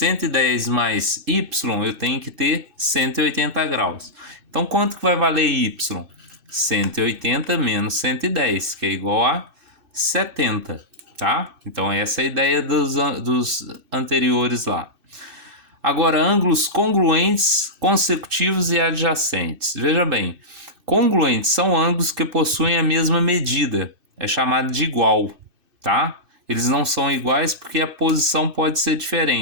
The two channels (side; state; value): left; late; 2.6 ms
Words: mais y, eu tenho que ter 180 graus. Então quanto que vai valer y? 180 menos 110, que é igual a 70, tá? Então essa é a ideia dos anteriores lá. Agora, ângulos congruentes, consecutivos e adjacentes. Veja bem, congruentes são ângulos que possuem a mesma medida, é chamado de igual, tá? Eles não são iguais porque a posição pode ser